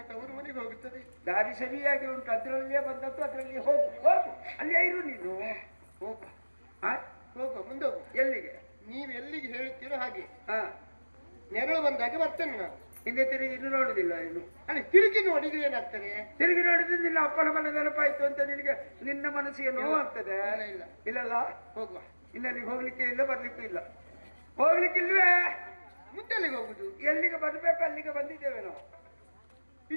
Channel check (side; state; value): both; inverted; correlation -1.00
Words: ತವರು ಮನೆಗೆ ಹೋಗುತ್ತದೆ ದಾರಿ ಸರಿಯಾಗಿ ಉಂಟು ಅದ್ರಲ್ಲಿಯೇ ಬಂದದ್ದು ಅದ್ರಲ್ಲಿ ಹೋಗು ಹೋಗು ಅಲ್ಲೇ ಇರು ನೀನು ಹೋಗ ಹಾ ಹೋಗುವ ಮುಂದೆ ಹೋಗು ಎಲ್ಲಿಗೆ ನೀವು ಎಲ್ಲಿಗೆ ಹೇಳ್ತೀರೋ ಹಾಗೆ ಹಾ ನೆರಳು ಬಂದಾಗ ಬರ್ತೇನೆ ನಾನು ಹಿಂದೆ ತಿರುಗಿ ಇನ್ನು ನೋಡುದಿಲ್ಲ ಇನ್ನು ಅಲ್ಲಿ ತಿರುಗಿ ನೋಡಿದ್ರೆ ಏನಾಗ್ತದೆ ತಿರುಗಿ ನೋಡಿದ್ರೆ ನಿನ್ನ ಅಪ್ಪನ ಮನೆ ನೆನಪಾಯ್ತು ಅಂತ ನಿನಗೆ ನಿನ್ನ ಮನಸ್ಸಿಗೆ ನೋವಾಗ್ತದೆ ಇಲ್ಲ, ಇಲ್ಲ. ಇಲ್ಲಲ್ಲ ಹೋಗುವ ಇನ್ನಲ್ಲಿಗೆ ಹೋಗ್ಲಿಕ್ಕೆ ಇಲ್ಲ ಬರ್ಲಿಕ್ಕೂ ಇಲ್ಲ ಹೋಗ್ಲಿಕ್ಕಿಲ್ವೇ ಮುಂದೆಲ್ಲಿಗೆ ಹೋಗುದು ಎಲ್ಲಿಗೆ ಬರ್ಬೇಕು ಅಲ್ಲಿಗೆ ಬಂದಿದ್ದೇವೆ ನಾವು